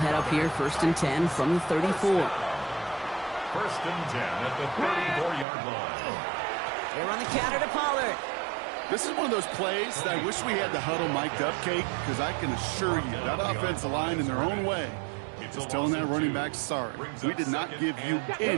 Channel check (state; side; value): drops out; left; at 5.5 s